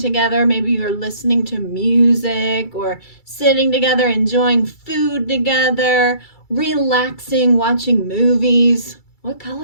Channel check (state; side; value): late; right; 2.3 ms